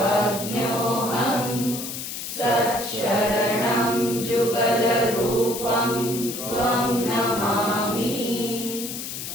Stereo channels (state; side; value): noise; left; hiss, 7 dB below the sound